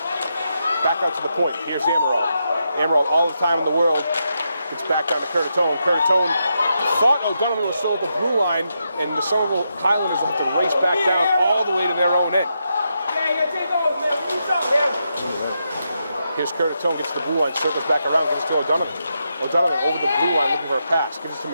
Back out to the point. Here's Amaral. Amaral, all the time in the world. It's back down to Curtatone. Curtatone thought O'Donovan was still at the blue line, and the Somerville Highlanders will have to race back down all the way to their own end. Here's Curtatone, gets to the blue line, circles back around, gives it to O'Donovan. O'Donovan over the blue line looking for a pass. Gives it to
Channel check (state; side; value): inverted; both; correlation -0.84